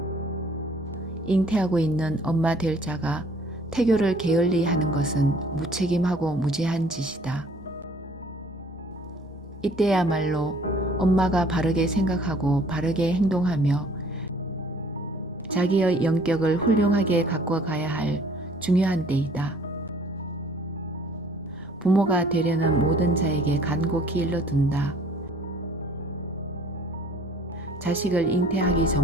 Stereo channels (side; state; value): both; normal; correlation 0.55